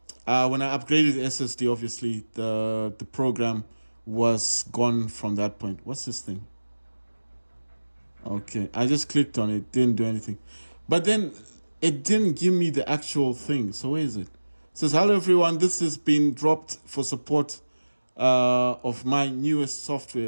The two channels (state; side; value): inverted; both; correlation -1.00